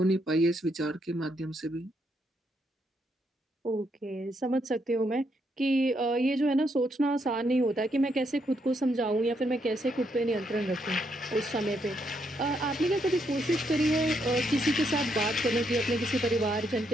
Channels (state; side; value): normal; both; correlation 0.76